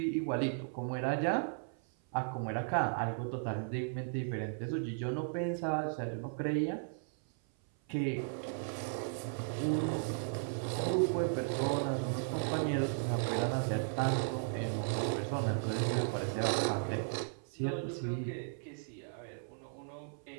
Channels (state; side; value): silent; left; 54 dB below the other